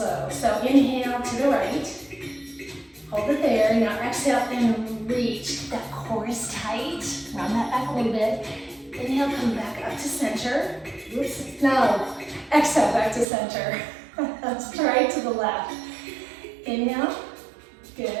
So inhale to the right. Hold it there. Now exhale and reach. That core is tight. Round that back a little bit. Inhale, come back up to center. Oops. Now, exhale back to center. Let's try to the left. Inhale.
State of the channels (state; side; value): drops out; left; at 13.2 s